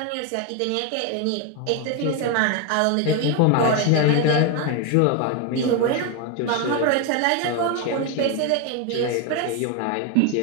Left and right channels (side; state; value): both; different; correlation 0.02